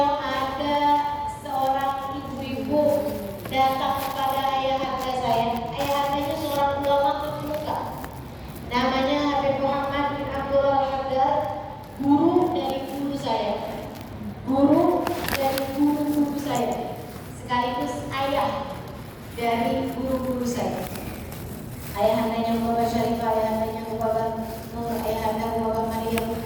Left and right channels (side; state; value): both; identical; correlation 1.00